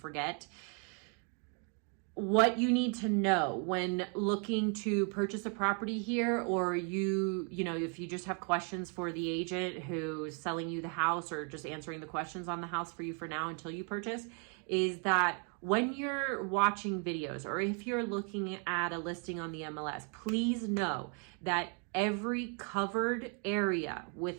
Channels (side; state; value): left; quieter; 39.0 dB